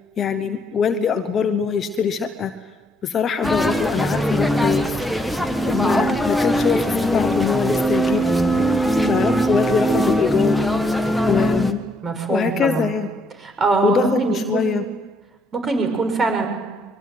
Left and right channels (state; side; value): normal; both; correlation 0.73